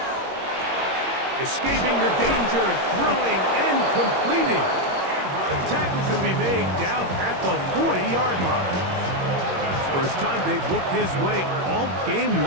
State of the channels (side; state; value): left; late; 21 ms